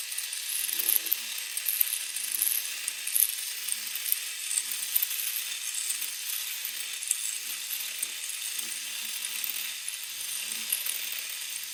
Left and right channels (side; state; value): both; identical; correlation 1.00